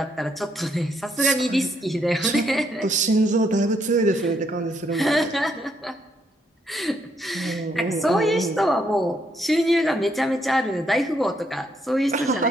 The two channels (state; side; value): normal; both; correlation 0.74